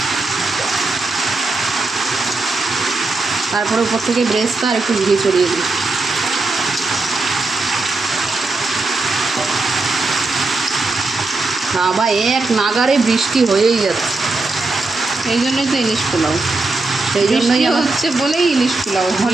তারপরে উপর থেকে ব্রেস্টটা আর একটু ঘি ছড়িয়ে দিই। আবার এক নাগারে বৃষ্টি হয়েই যাচ্ছে, এই জন্যই তো ইলিশ পোলাও, সেই জন্যই হচ্ছে বলেই ইলিশ পোলাও।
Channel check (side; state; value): left; quieter; 3.4 dB